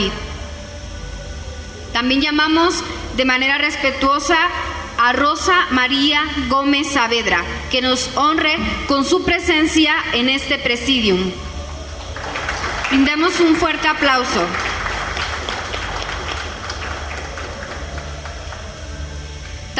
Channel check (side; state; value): both; identical; correlation 1.00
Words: También llamamos de manera respetuosa a Rosa María Gómez Saavedra, que nos honre con su presencia en este Presidium. Brindemos un fuerte aplauso.